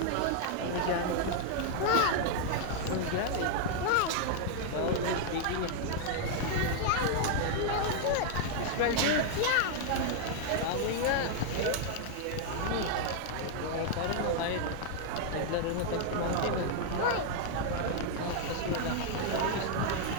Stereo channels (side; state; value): both; different; correlation 0.00